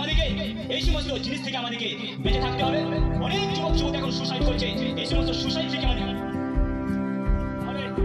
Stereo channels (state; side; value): identical; both; correlation 1.00